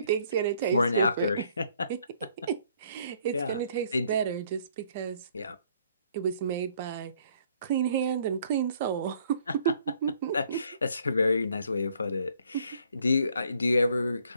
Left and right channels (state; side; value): inverted; both; correlation -0.64